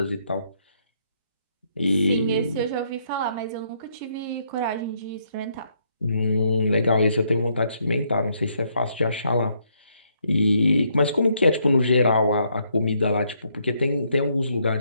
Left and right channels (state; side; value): inverted; both; correlation -0.73